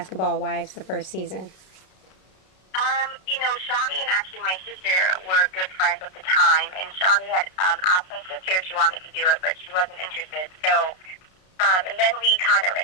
Wives the first season? Shawnee and actually my sister were good friends at the time, and Shawnee had asked my sister if she wanted to do it, but she wasn't interested. So, and then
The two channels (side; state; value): right; late; 32 ms